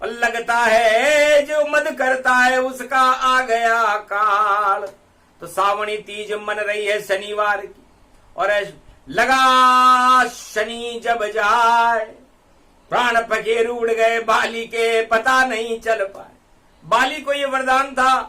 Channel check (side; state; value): both; identical; correlation 1.00